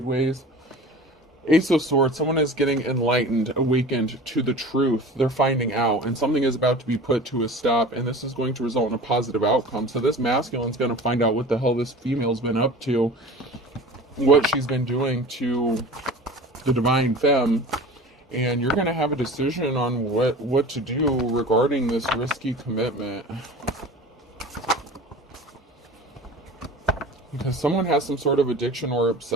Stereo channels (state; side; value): normal; both; correlation 0.38